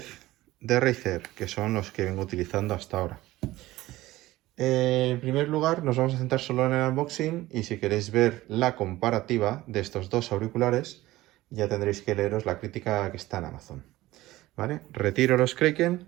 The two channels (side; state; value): left; quieter; 17.3 dB